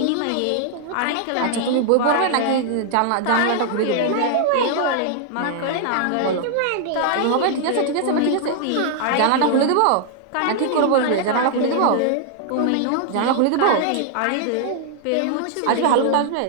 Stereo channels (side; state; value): both; different; correlation 0.00